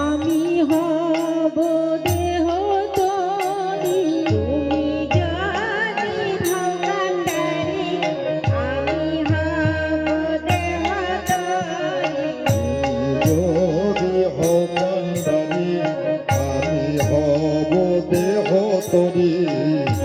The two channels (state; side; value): identical; both; correlation 1.00